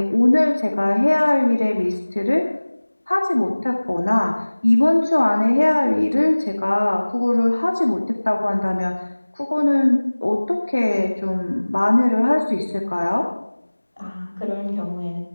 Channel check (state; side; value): inverted; both; correlation -1.00